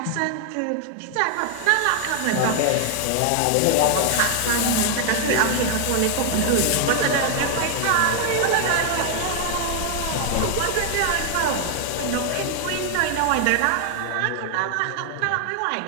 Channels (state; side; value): different; both; correlation 0.00